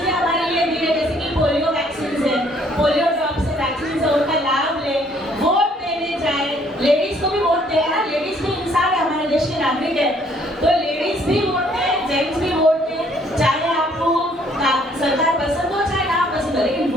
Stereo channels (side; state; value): both; normal; correlation 0.63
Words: हमारे लिए दी है, जैसे कि पोलियो वैक्सीन है, पोलियो ड्रॉप्स है, वैक्सीन है, उनका लाभ ले, वोट देने जाए। लेडीज को भी वोट दें ना, लेडीज भी इंसान है, हमारे देश के नागरिक है, तो लेडीज भी वोट दें, जेंट्स भी वोट दें। चाहे आपको सरकार पसंद हो चाहे ना पसंद हो, लेकिन